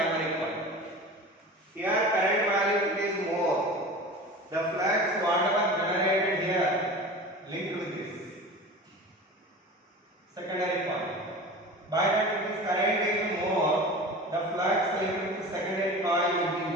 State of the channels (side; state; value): both; normal; correlation 0.35